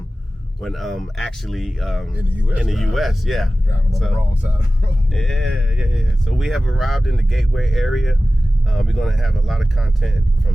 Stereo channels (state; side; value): normal; both; correlation 0.96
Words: actually in the U.S. Yeah, driving on the wrong side of the road. Yeah. So we have arrived in the Gateway area. We're gonna have a lot of content